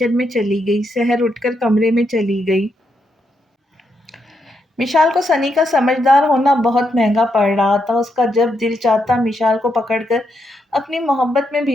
میں چلی گئی۔ سحر اٹھ کر کمرے میں چلی گئی۔ مشال کو سنی کا سمجھدار ہونا بہت مہنگا پڑ رہا تھا۔ اس کا جب دل چاہتا مشال کو پکڑ کر اپنی محبت میں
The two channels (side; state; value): both; normal; correlation 0.80